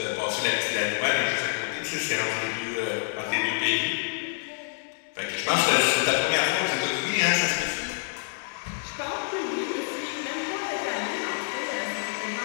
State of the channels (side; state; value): right; silent; digital silence